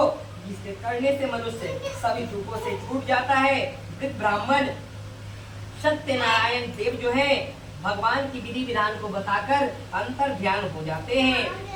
जिसके करने से मनुष्य सभी दुखों से छूट जाता है। वृद्ध ब्राह्मण सत्यनारायण देव जो है भगवान की विधि विधान को बताकर अंतर ध्यान हो जाते हैं।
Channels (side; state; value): both; identical; correlation 1.00